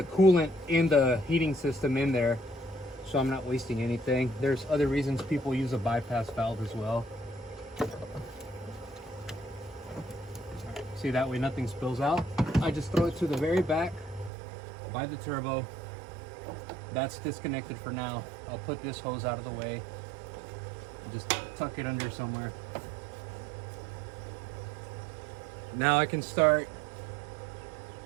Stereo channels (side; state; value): left; drops out; at 14.3 s